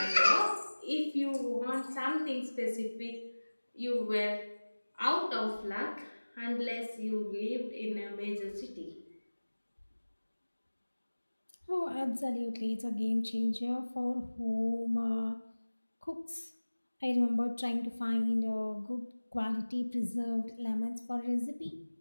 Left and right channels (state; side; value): inverted; both; correlation -1.00